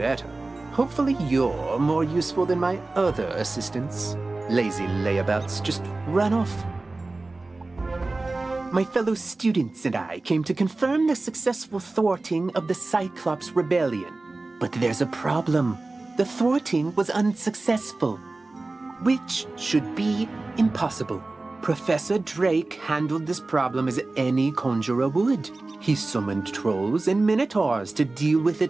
Hopefully you're more useful than my other assistants. Lazy layabouts just run off. My fellow students and I came to confirm the successful thwarting of the Cyclops Rebellion. But there's a problem. The thwarting was unsuccessful, which should be impossible. Professor Drake handled this problem as any conjurer would. He summoned trolls and minotaurs to deal with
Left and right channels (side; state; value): left; quieter; 3.2 dB